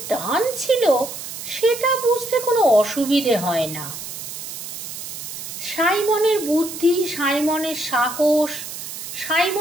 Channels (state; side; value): noise; right; hiss, 9 dB below the sound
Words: টান ছিল সেটা বুঝতে কোনো অসুবিধে হয় না। সাইমনের বুদ্ধি, সাইমনের সাহস,